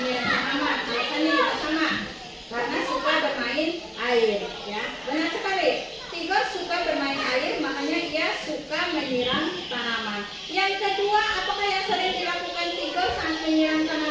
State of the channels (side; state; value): both; identical; correlation 1.00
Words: tanaman. Biasanya juga sama. Karena suka bermain air, ya. Benar sekali. Tigor suka bermain air